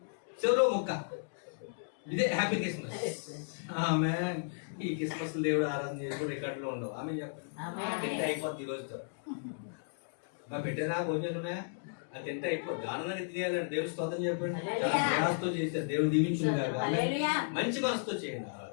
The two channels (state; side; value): silent; right; digital silence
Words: చెరువు ముక్క. ఇదే హ్యాపీ క్రిస్మస్. ఆమె ఈ క్రిస్మస్ దేవుడు ఆరాధన చేసి రికార్డులో ఉండవు. ఆమె చెప్పండి తింటే అయిపోద్ది ఈ రోజుతో. మా పెట్టేనా భోజనాలు ఉన్నాయా? అది తింటే అయిపోద్ది. ఆనందాన్ని తినేయాలండి. దేవుడు స్తోత్రం చెప్పండి. చాలా ప్రయాసతో చేశారు. దేవుడు దీవించును గాక. మంచి మనసుతో చేయండి